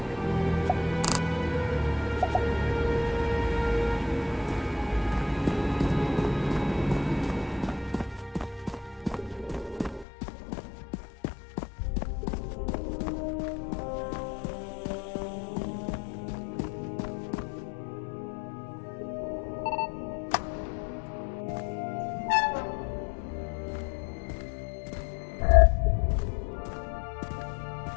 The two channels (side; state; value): right; drops out; at 10.1 s